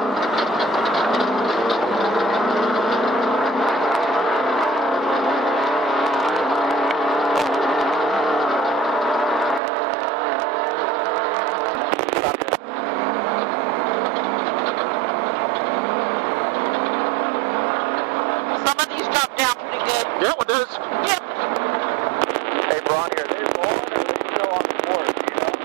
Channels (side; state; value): left; drops out; at 9.6 s